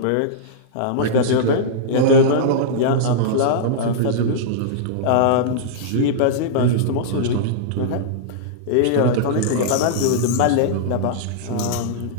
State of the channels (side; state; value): both; different; correlation -0.03